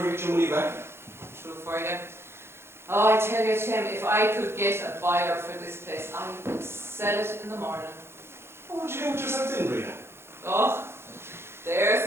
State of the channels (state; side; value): late; left; 0.12 ms